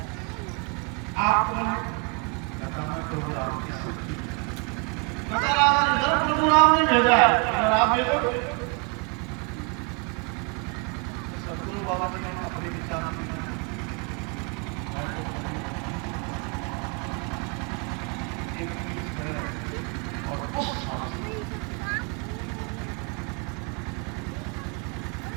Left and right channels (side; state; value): left; quieter; 33.5 dB